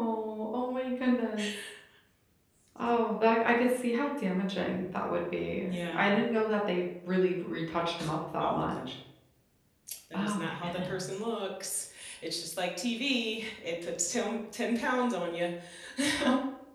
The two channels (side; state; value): both; identical; correlation 1.00